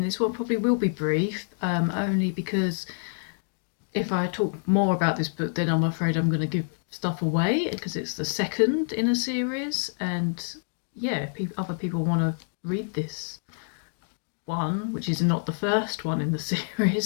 this one probably will be brief, only because if I talk more about this book, then I'm afraid I'm going to give stuff away because it's the second in a series, and yeah, other people want to read this one, which is not the first one in the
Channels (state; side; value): silent; right; digital silence